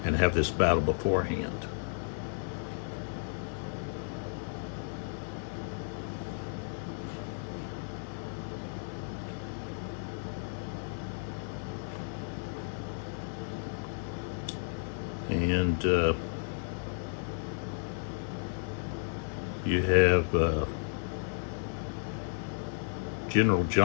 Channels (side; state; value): right; silent; digital silence